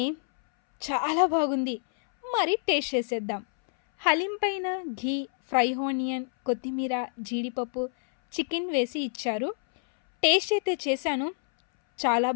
చాలా బాగుంది. మరి టేస్ట్ చేసేద్దాం. హలీం పైన ఘీ, ఫ్రై ఆనియన్, కొత్తిమీర, జీడిపప్పు, చికెన్ వేసి ఇచ్చారు. టేస్ట్ అయితే చేశాను, చాలా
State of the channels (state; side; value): silent; right; 60 dB below the other